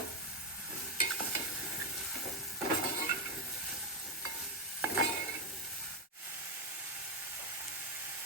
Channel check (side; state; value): both; normal; correlation 0.06